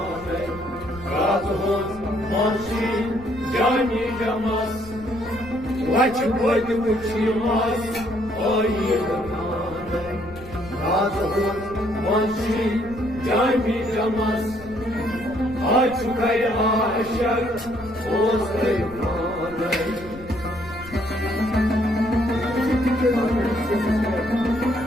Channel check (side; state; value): left; noise; rumble, 18 dB below the sound